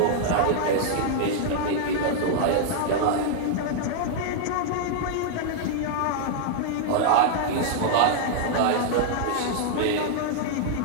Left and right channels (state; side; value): different; both; correlation -0.01